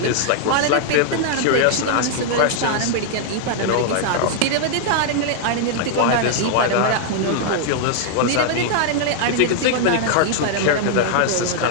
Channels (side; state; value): both; different; correlation -0.01